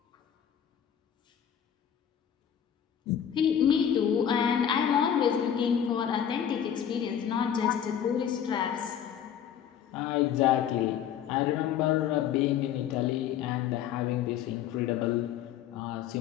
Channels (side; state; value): right; quieter; 9.2 dB